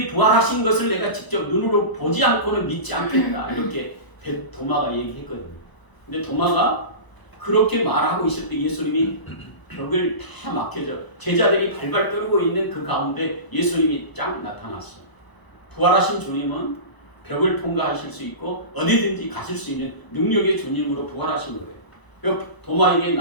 부활하신 것을 내가 직접 눈으로 보지 않고는 믿지 않겠다. 이렇게 도마가 얘기했거든요. 근데 도마가 그렇게 말하고 있을 때 예수님이 벽을 다 막혀져 제자들이 발발 떨고 있는 그 가운데 예수님이 쫙 나타났어요. 부활하신 주님은 벽을 통과하실 수 있고 어디든지 가실 수 있는 능력의 주님으로 부활하신 거예요. 도마에게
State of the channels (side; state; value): right; late; 1.0 ms